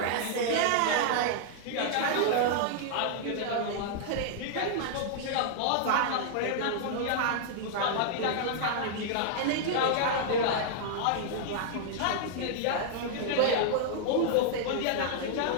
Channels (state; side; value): different; both; correlation -0.01